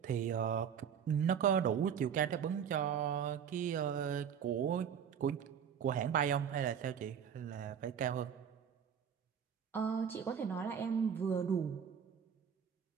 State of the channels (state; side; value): quieter; left; 7.9 dB